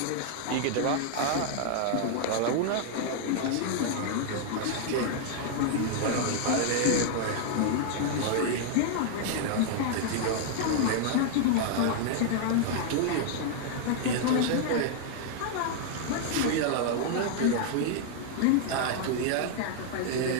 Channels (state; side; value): different; both; correlation 0.00